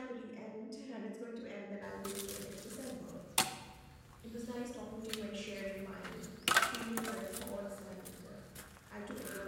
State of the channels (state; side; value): identical; both; correlation 1.00